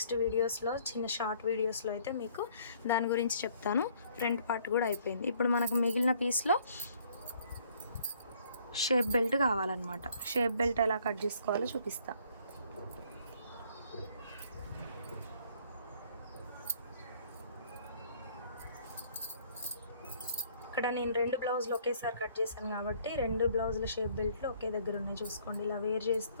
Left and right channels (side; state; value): both; inverted; correlation -0.61